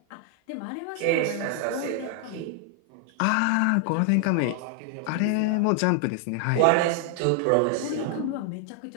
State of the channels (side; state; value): both; different; correlation 0.00